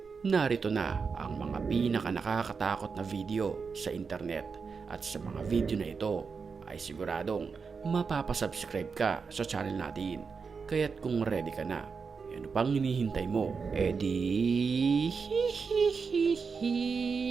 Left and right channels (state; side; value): quieter; left; 5.3 dB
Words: Narito na ang mga pinaka-nakakatakot na video sa internet at sa mga video na ito ay siguradong mapapasubscribe ka sa channel natin. Kaya't kung ready ka na, ano pang hinihintay mo?